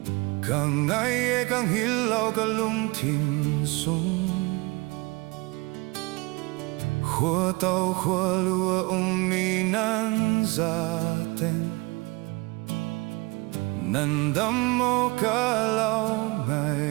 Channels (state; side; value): quieter; left; 24.1 dB